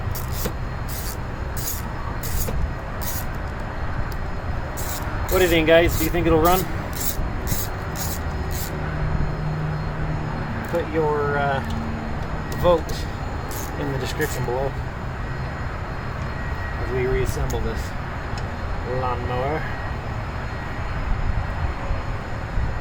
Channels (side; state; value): both; identical; correlation 1.00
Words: What do you think, guys? Do you think it'll run? Put your vote in the description below as we reassemble this lawnmower.